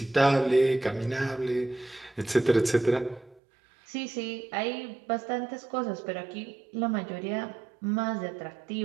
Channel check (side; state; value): left; drops out; at 3.4 s